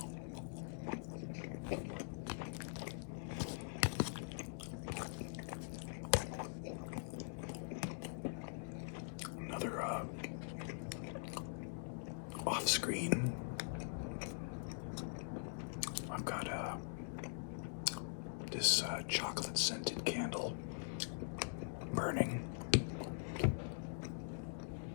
Another off-screen. I've got this chocolate-scented candle burning.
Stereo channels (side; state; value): right; silent; digital silence